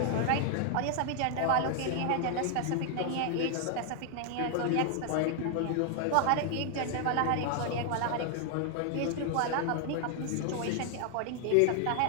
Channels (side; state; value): both; different; correlation 0.00